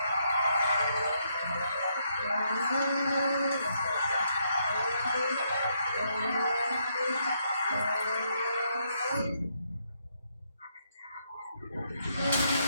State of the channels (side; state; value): both; inverted; correlation -0.75